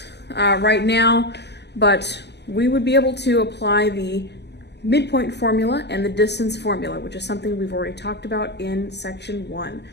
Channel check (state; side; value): late; right; 0.50 ms